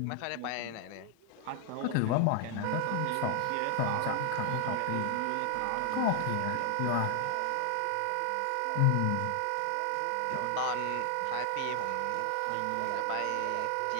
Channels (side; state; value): both; different; correlation 0.00